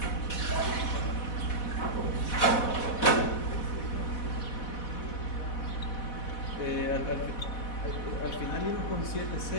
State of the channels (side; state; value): right; late; 4.1 ms